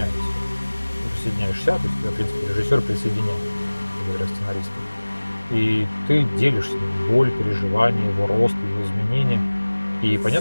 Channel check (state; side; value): inverted; both; correlation -1.00